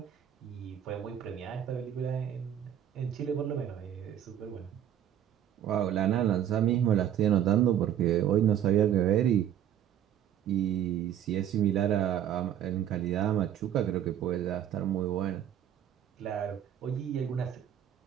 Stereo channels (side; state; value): left; quieter; 10.3 dB